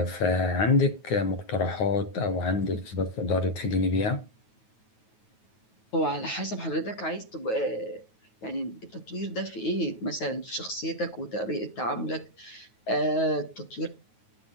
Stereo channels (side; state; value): right; late; 9.3 ms